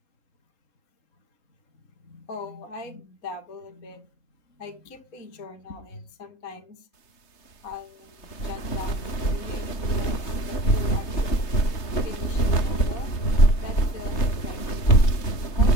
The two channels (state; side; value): late; right; 3.3 ms